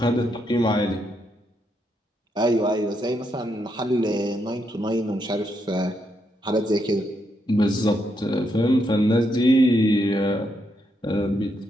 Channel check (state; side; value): normal; both; correlation 0.79